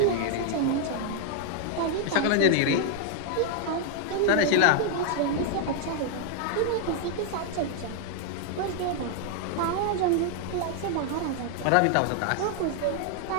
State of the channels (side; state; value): both; different; correlation 0.00